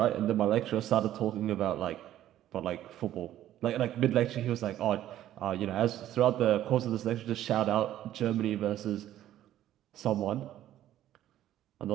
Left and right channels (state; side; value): quieter; left; 12.6 dB